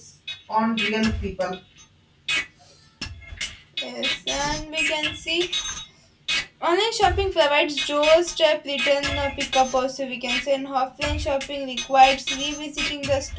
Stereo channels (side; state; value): both; identical; correlation 1.00